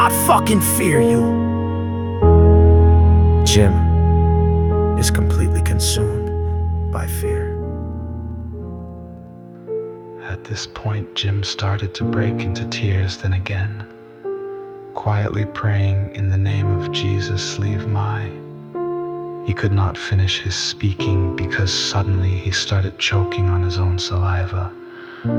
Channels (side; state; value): both; identical; correlation 1.00